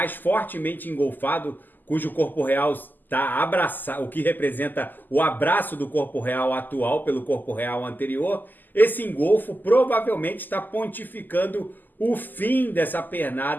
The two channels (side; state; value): right; late; 0.087 ms